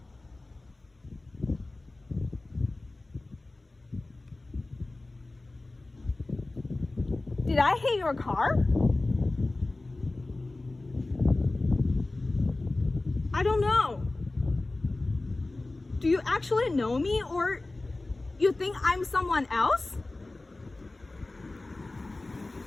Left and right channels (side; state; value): right; quieter; 3.0 dB